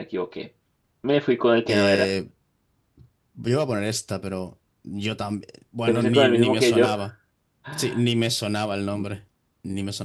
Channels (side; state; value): both; identical; correlation 1.00